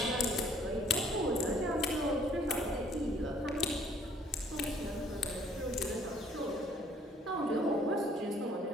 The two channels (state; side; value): normal; both; correlation 0.60